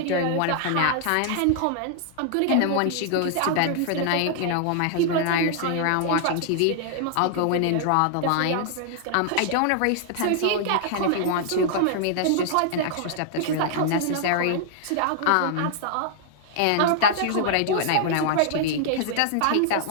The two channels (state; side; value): different; both; correlation -0.01